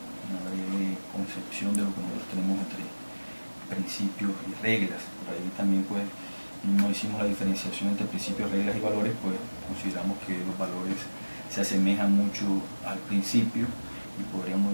concepción de lo que nosotros tenemos entre principios y reglas. Por ahí también pues no hicimos la diferenciación entre principios, reglas y valores, pues consideramos que los valores se asemejan mucho al principio y podríamos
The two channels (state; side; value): inverted; both; correlation -1.00